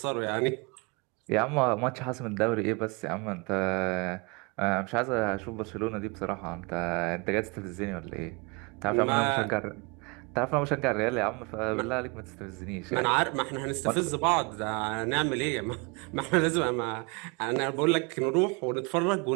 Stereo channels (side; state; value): left; quieter; 30.1 dB